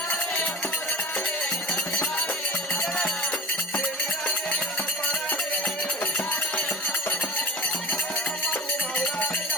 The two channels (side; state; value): both; normal; correlation 0.36